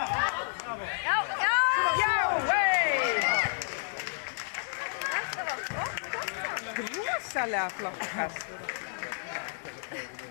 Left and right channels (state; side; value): silent; right; digital silence